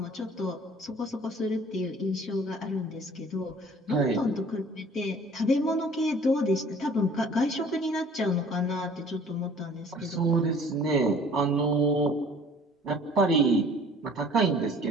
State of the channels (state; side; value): normal; both; correlation 0.51